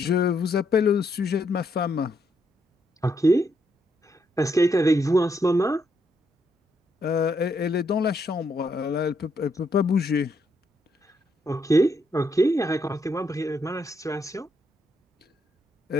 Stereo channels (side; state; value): both; normal; correlation 0.76